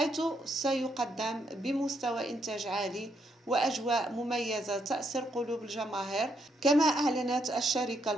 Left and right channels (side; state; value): both; normal; correlation 0.76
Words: سيقدم بمستوى إنتاج عالي وأجواء مميزة تأسر قلوب الجماهير. كما أعلنت الشركة